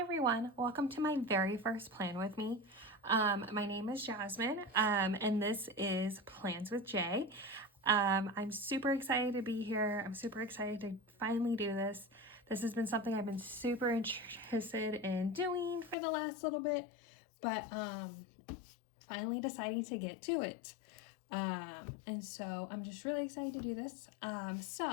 welcome to my very first plan with me. My name is Jasmine, and this is Plans with Jay. I'm super excited to be here. I'm super excited to finally do this. This has been something I've been super interested in doing for the last little bit, but finally deciding to get to it. And so I'm just really excited to do this.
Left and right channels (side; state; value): right; drops out; at 16.0 s